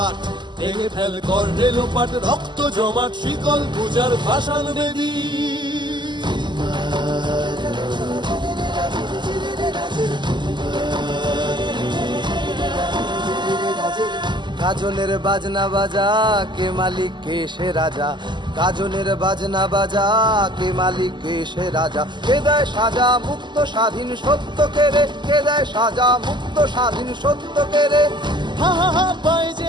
ভেঙে ফেল কর রে লোপাট, রক্ত জমাট শিকল পূজার পাষাণ বেদী। গাজনের বাজনা বাজা কে মালিক কে সে রাজা, গাজনের বাজনা বাজা কে মালিক কে সে রাজা। কে দেয় সাজা মুক্ত স্বাধীন সত্য কে রে, কে দেয় সাজা মুক্ত স্বাধীন সত্য কে রে। হা হা হা পায় যে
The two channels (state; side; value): late; left; 0.22 ms